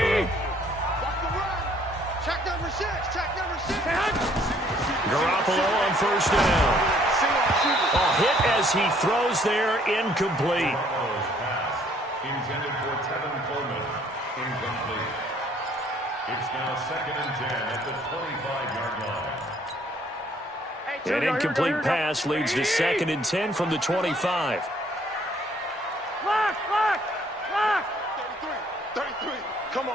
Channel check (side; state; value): both; normal; correlation 0.62